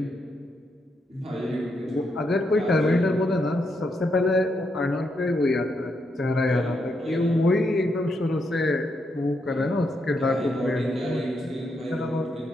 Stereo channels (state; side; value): normal; both; correlation 0.80